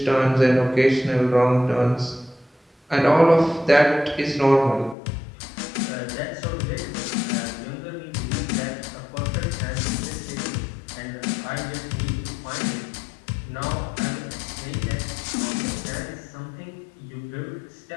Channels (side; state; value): right; drops out; at 5.0 s